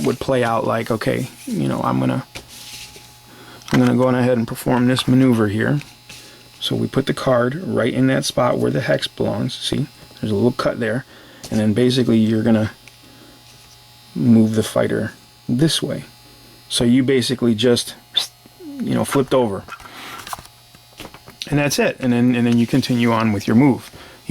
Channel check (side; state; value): both; identical; correlation 1.00